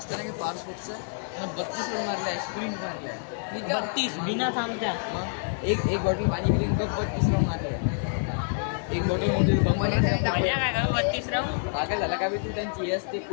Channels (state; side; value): silent; right; 60 dB below the other